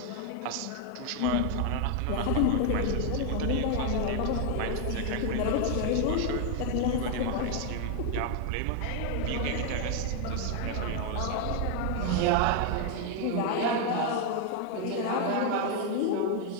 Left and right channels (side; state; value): both; different; correlation 0.01